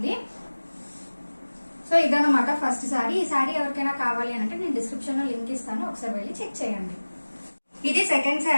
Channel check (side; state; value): both; inverted; correlation -1.00